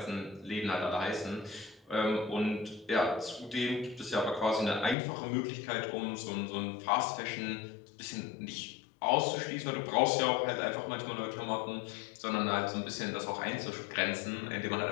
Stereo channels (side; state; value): right; drops out; at 5.0 s